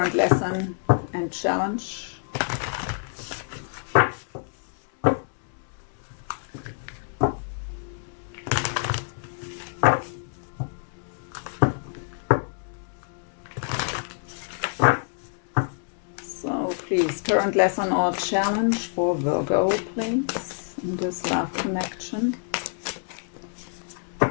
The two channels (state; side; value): silent; right; 60 dB below the other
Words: lesson and challenge. Current lesson or challenge for Virgo, please, in this love connection.